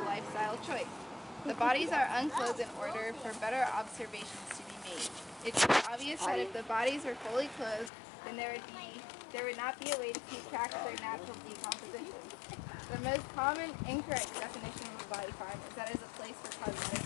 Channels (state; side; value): drops out; right; at 7.9 s